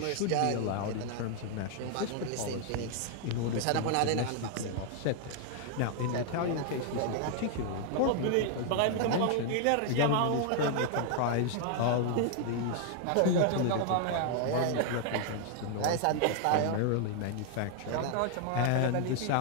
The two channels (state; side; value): different; both; correlation 0.00